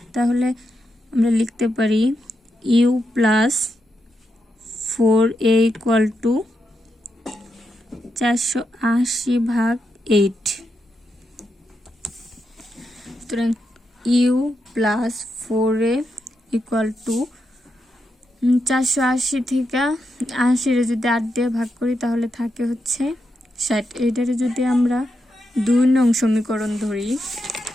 তাহলে আমরা লিখতে পারি u plus 4a equal to 480/8, সুতরাং u plus 4a equal to 480 থেকে 80 যদি 8 দিয়ে ভাগ করি তাহলে থাকে হচ্ছে 60। এটারে যদি আমরা 2 নং সমীকরণ ধরি,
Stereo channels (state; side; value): normal; both; correlation 0.85